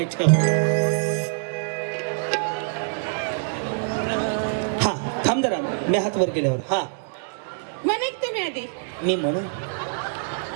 हा थांब जरा मी हात वर केल्यावर हा म्हणे तुम्ही आधी मी म्हणू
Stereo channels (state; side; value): silent; left; digital silence